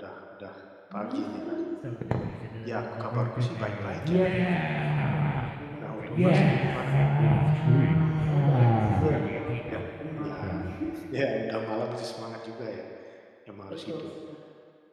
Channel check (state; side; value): identical; both; correlation 1.00